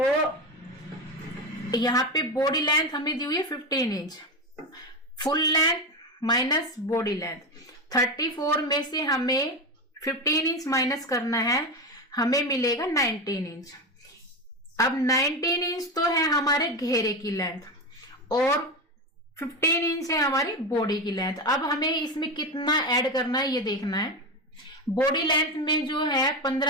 यहाँ पे बॉडी लेंथ हमें दी हुई है 15 inch. Full length minus body length, 34 में से हमें 15 इंच माइनस करना है, हमें मिलेगा 19 इंच। अब 19 इंच तो है हमारे घेरे की लेंथ और 15 इंच है हमारी बॉडी की लेंथ। अब हमें इसमें कितना ऐड करना है ये देखना है। बॉडी लेंथ में जो है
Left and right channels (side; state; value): both; normal; correlation 0.18